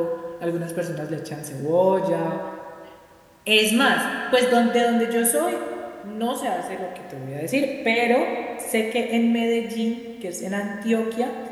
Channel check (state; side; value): identical; both; correlation 1.00